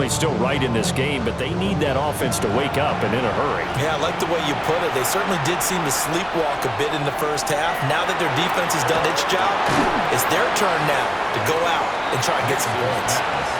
still right in this game, but they need that offense to wake up and in a hurry. Yeah, I like the way you put it. They certainly did seem to sleepwalk a bit in the first half. Now that their defense has done its job, it's their turn now to go out and try and get some points.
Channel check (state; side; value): identical; both; correlation 1.00